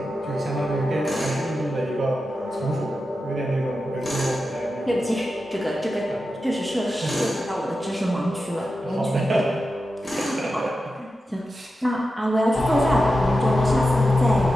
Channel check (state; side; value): normal; both; correlation 0.91